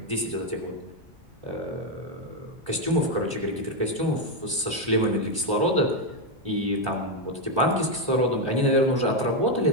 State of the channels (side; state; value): left; late; 1.2 ms